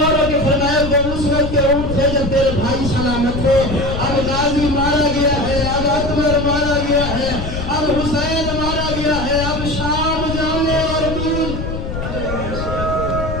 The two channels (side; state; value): left; noise; rumble, 5 dB below the sound